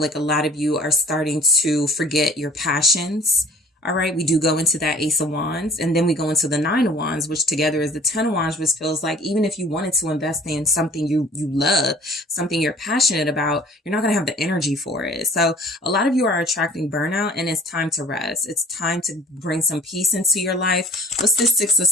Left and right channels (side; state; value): both; normal; correlation 0.50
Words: like a lot of you are starting to forget your passions. All right. We do go into that Ace of Wands, and then we go into the Nine of Wands, which together is the Ten of Wands, which feels like even if you wanted to invest in something you love, something you're passionate about, you're not going to have the energy for it. So a lot of you are attracting burnout, and it's time to rest. It's time to bring some peace into your life. What's this Six of